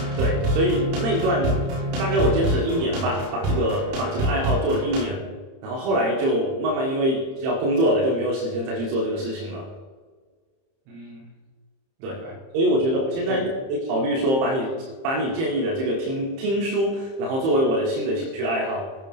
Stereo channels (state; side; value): late; left; 30 ms